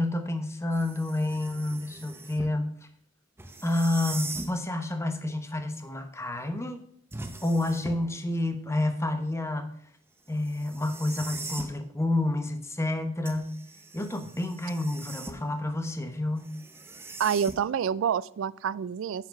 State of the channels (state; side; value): normal; both; correlation 0.68